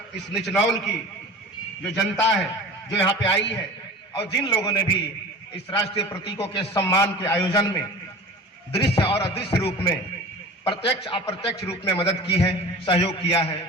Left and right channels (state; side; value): normal; both; correlation 0.37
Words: इस निचनौल की जो जनता है जो यहाँ पे आई है और जिन लोगों ने भी इस राष्ट्रीय प्रतीकों के सम्मान के आयोजन में दृश्य और अदृश्य रूप में, प्रत्यक्ष अप्रत्यक्ष रूप में मदद की है, सहयोग किया है,